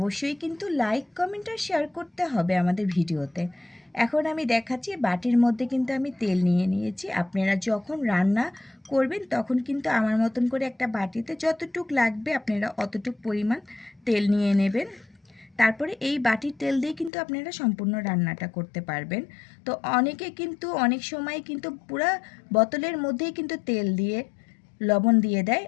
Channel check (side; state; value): right; drops out; at 17.1 s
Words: কিন্তু লাইক কমেন্ট আর শেয়ার করতে হবে আমাদের ভিডিওতে। এখন আমি দেখাচ্ছি, বাটির মধ্যে কিন্তু আমি তেল নিয়ে নিয়েছি। আপনারা যখন রান্না করবেন তখন কিন্তু আমার মতন করে একটা বাটিতে যতটুক লাগবে আপনারা অতটুক পরিমাণ তেল নিয়ে নেবেন। তারপরে এই বাটির তেল দিয়ে কিন্তু আপনারা সম্পূর্ণ রান্নাটা করতে পারবেন। তো অনেকে কিন্তু অনেক সময় কিন্তু পুরা বোতলের মধ্যেই কিন্তু তেল দিয়ে লবণ দিয়ে দেয়।